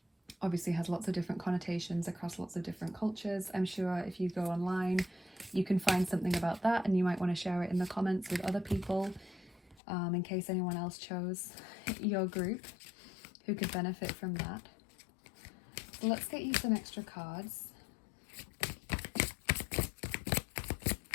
obviously has lots of different connotations across lots of different cultures. I'm sure if you go online, you can find something about that, and you might want to share it in the comments with other people, in case anyone else chose your group who could benefit from that. So let's get you some extra cards.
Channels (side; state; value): right; drops out; at 9.8 s